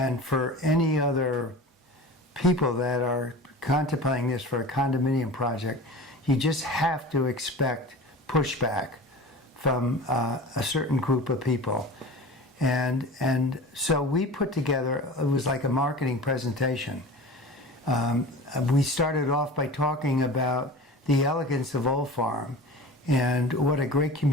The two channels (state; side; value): normal; both; correlation 0.36